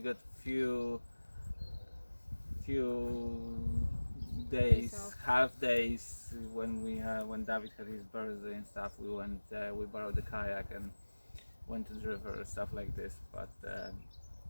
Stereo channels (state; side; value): inverted; both; correlation -1.00